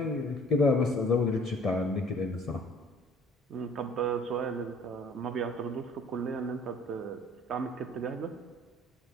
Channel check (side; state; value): both; normal; correlation 0.53